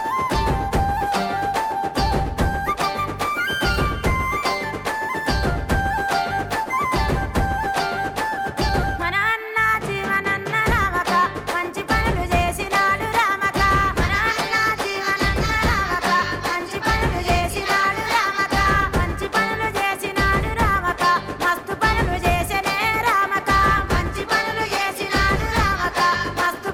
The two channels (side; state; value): both; identical; correlation 1.00